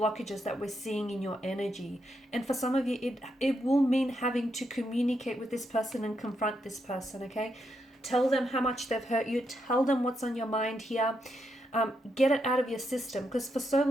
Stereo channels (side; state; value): both; normal; correlation 0.81